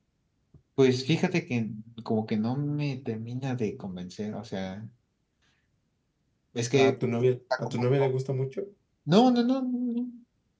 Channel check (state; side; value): identical; both; correlation 1.00